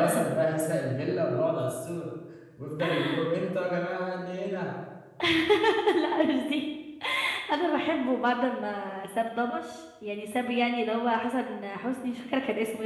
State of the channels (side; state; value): both; identical; correlation 1.00